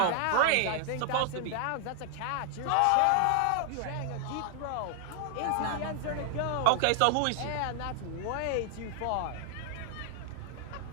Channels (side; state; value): both; different; correlation 0.00